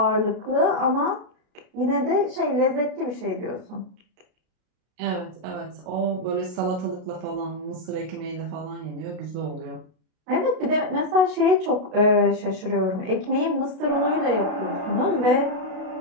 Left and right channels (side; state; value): left; late; 32 ms